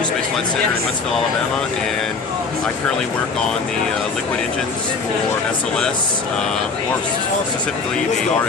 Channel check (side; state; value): right; quieter; 4.6 dB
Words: Space Flight Center in Huntsville, Alabama, and I currently work on the liquid engines for SLS, more specifically the